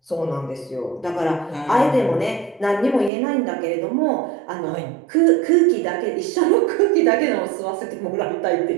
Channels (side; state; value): left; drops out; at 3.1 s